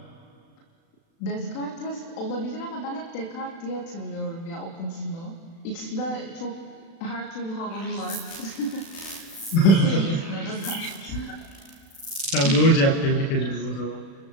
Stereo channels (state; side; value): late; right; 36 ms